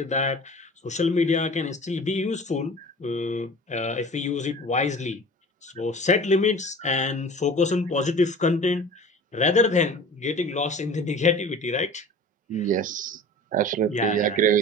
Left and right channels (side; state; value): both; normal; correlation 0.40